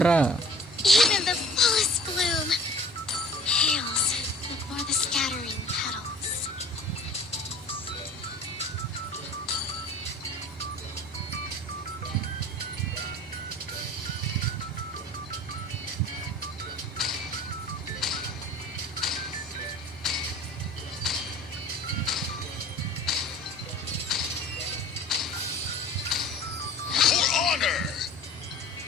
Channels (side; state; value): both; normal; correlation 0.45